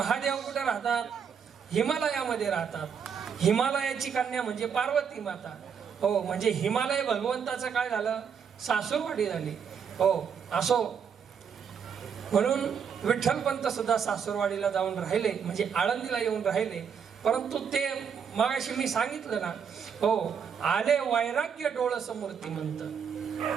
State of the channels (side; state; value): left; quieter; 7.0 dB